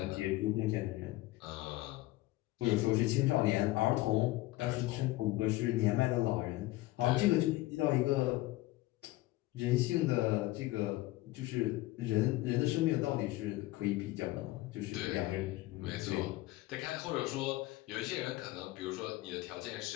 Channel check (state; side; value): quieter; right; 18.5 dB